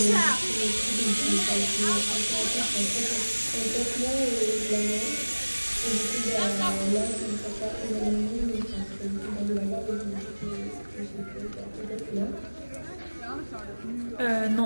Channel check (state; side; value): inverted; both; correlation -1.00